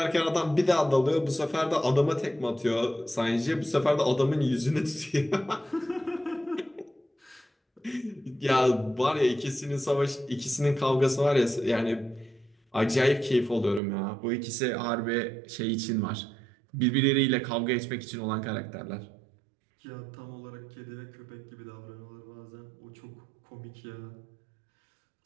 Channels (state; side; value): drops out; left; at 13.8 s